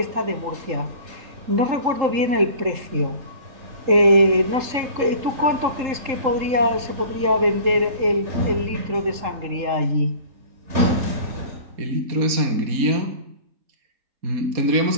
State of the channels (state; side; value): late; left; 3.7 ms